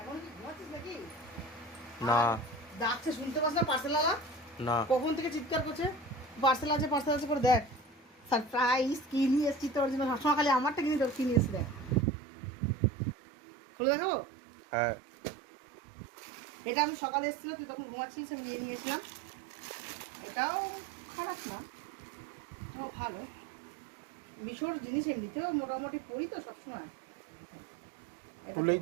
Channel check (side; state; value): left; drops out; at 12.1 s